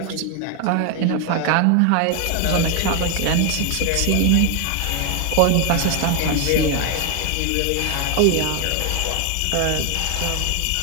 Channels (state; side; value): different; both; correlation 0.01